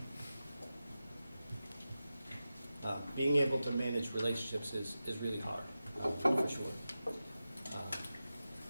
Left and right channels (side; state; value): both; inverted; correlation -0.93